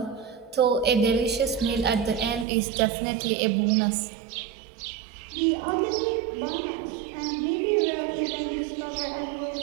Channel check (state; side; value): drops out; left; at 2.5 s